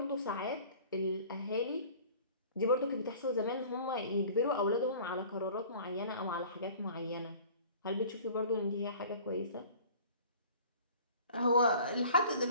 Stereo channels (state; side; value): inverted; both; correlation -0.47